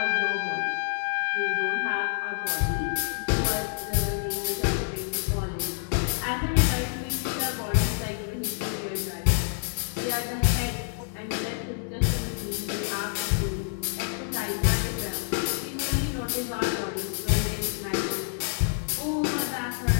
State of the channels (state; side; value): silent; right; digital silence